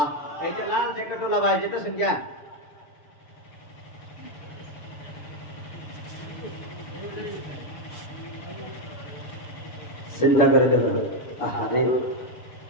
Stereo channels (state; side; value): late; right; 7.0 ms